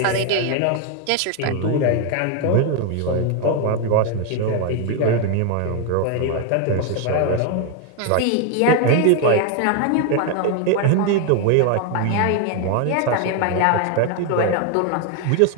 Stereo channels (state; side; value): different; both; correlation 0.01